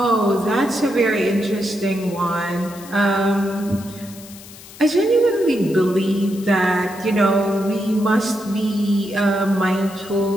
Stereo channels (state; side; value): noise; left; hiss, 18 dB below the sound